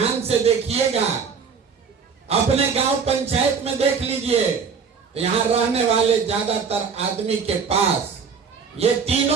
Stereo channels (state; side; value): quieter; left; 5.8 dB